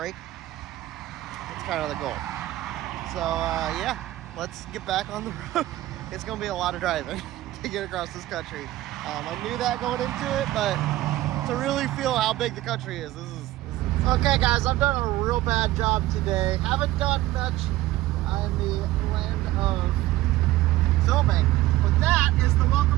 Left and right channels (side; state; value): left; quieter; 16.2 dB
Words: That's kind of the goal. So yeah, let's get back on the road. It's gonna be a lot of driving to get across this country. I knew that going into it, but to really feel how big the country is, this is okay guys, I've done a real bad job today. Haven't done much in the land of filming, but that is the